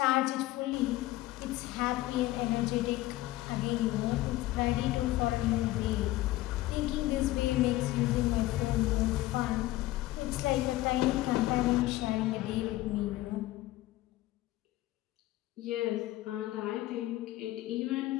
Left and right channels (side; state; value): right; quieter; 16.9 dB